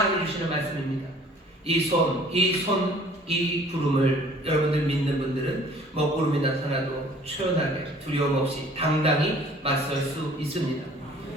주시는 말씀입니다. 이 구름을 여러분들 믿는 분들은 먹구름이 나타나도 초연하게 두려움 없이 당당히 맞설 수 있습니다.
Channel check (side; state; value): both; normal; correlation 0.53